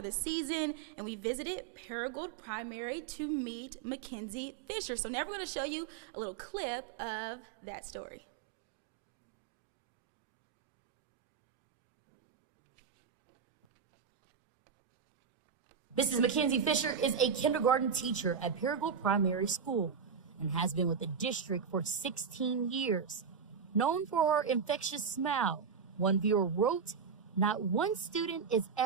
the season, and we visited Paragould Primary to meet Mackenzie Fisher. So now we're going to show you a little clip of that story. Mrs. Mackenzie Fisher is a kindergarten teacher at Paragould Primary School and has been with the district for 16 years. Known for her infectious smile, one viewer wrote, "Not one student is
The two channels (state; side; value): quieter; left; 6.4 dB